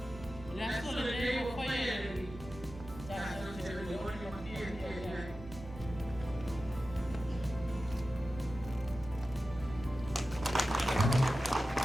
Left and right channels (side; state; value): both; normal; correlation 0.94